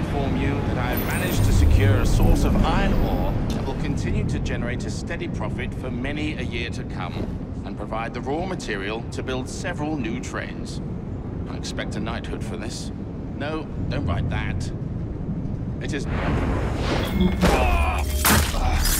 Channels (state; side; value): identical; both; correlation 1.00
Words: you that I have managed to secure a source of iron ore that will continue to generate a steady profit for many a year to come, and provide the raw material to build several new trains. I expect a knighthood for this. No, don't write that. It is...